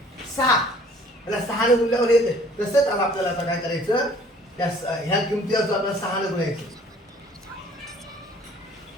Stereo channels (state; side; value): normal; both; correlation 0.54